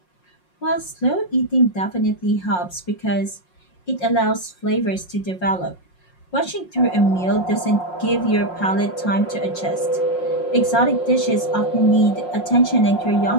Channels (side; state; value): right; late; 5.6 ms